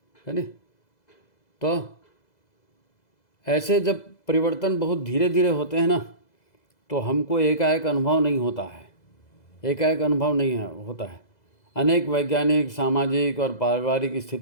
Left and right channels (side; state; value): right; late; 2.0 ms